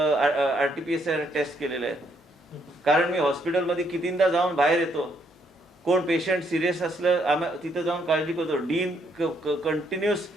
टेस्ट केलेले आहेत. कारण मी हॉस्पिटलमध्ये कितींदा जाऊन बाहेर येतो. कोण पेशंट सिरियस असलं तिथं जाऊन काळजी करतो. डीन कंटिन्युअस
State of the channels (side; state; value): both; normal; correlation 0.72